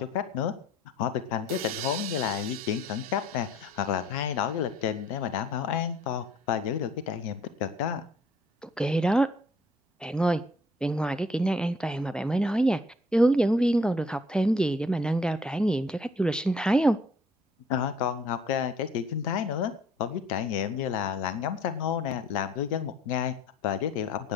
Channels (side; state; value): both; normal; correlation 0.59